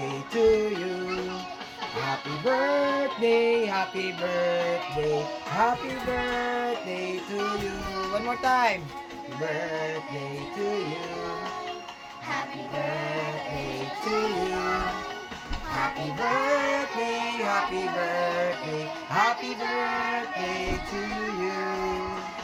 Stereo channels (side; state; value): both; identical; correlation 1.00